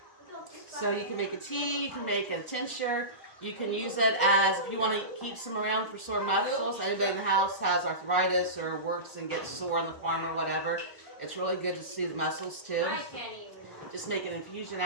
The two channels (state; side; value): late; right; 1.4 ms